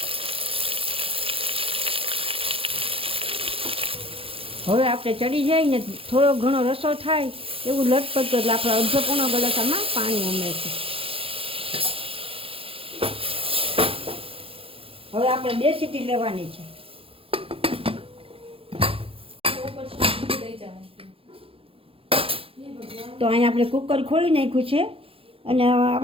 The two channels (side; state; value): left; late; 0.27 ms